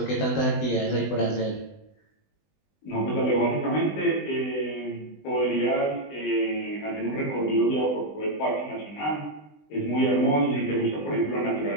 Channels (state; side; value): late; right; 20 ms